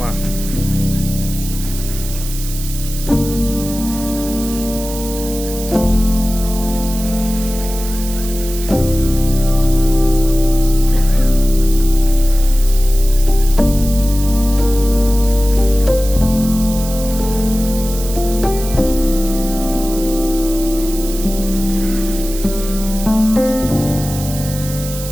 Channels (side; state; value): right; noise; hiss, 11 dB below the sound